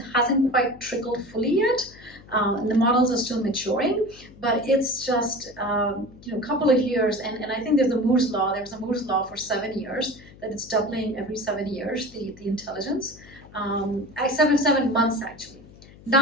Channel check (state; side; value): noise; left; hum, 22 dB below the sound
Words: hasn't quite trickled fully yet. And the models are still maturing, but it's just a couple of years. And I think there's a Moore's law. There's a Moore's law for 7 years, that it's doubling every 7 years, the intelligence. 7 months, actually.